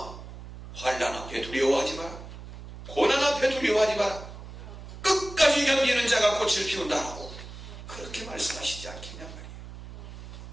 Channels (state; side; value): noise; right; hum, 13 dB below the sound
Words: 환난 앞에 두려워하지 마라, 고난 앞에 두려워하지 마라, 끝까지 견디는 자가 꽃을 피운다라고 그렇게 말씀하시지 않겠냔 말이에요.